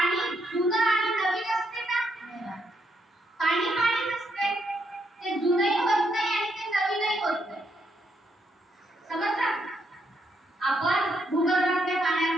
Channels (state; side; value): normal; both; correlation 0.77